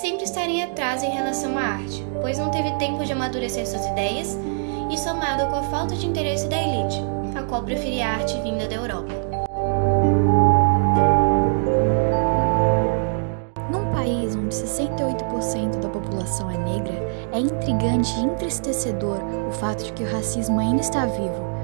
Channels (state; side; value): silent; left; digital silence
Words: estar em atraso em relação à arte, pois não teve tempo de amadurecer suas ideias e somado com a falta de interesse da elite, a qual preferia a arte vinda da Europa. Num país onde 68% da população é negra, é intrigante e entristecedor o fato de que o racismo ainda está vivo,